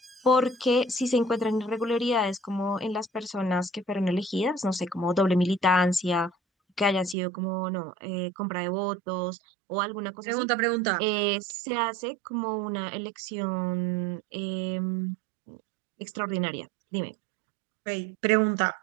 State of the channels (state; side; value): drops out; left; at 7.2 s